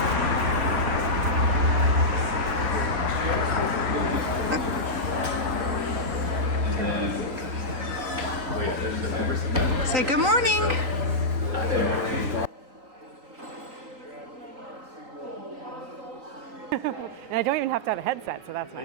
Say good morning. And I don't even have to have a headset, so that's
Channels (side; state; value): left; late; 3.9 ms